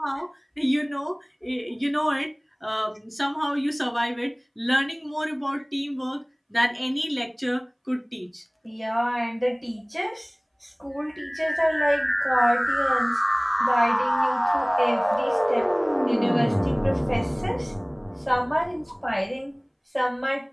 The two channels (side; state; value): both; identical; correlation 1.00